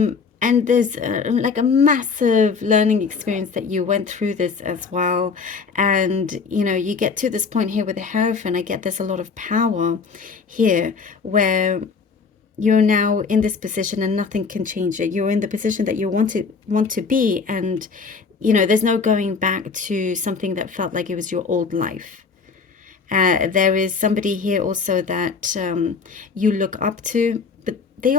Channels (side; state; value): right; quieter; 5.1 dB